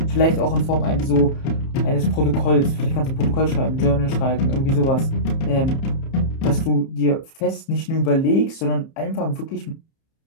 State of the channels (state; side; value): late; right; 30 ms